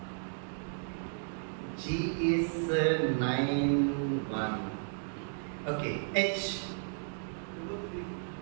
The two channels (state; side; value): silent; left; digital silence